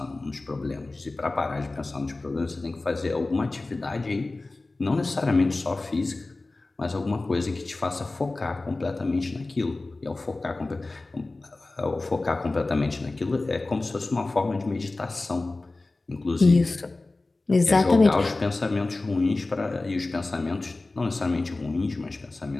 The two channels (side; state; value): right; quieter; 3.2 dB